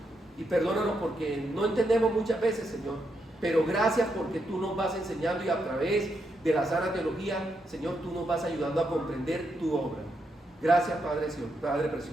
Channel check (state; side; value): normal; both; correlation 0.81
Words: Y perdónanos porque no entendemos muchas veces, Señor. Pero gracias porque tú nos vas enseñando y a través de la sana teología, Señor, tú nos vas ayudando a comprender tu obra. Gracias, Padre